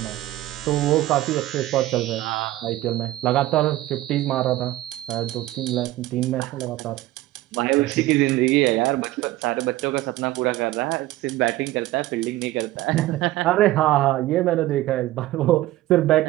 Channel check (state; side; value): quieter; left; 16.2 dB